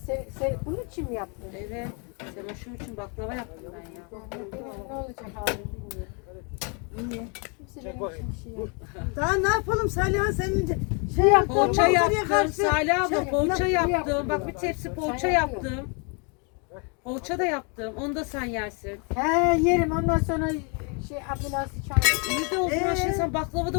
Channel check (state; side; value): quieter; right; 35.8 dB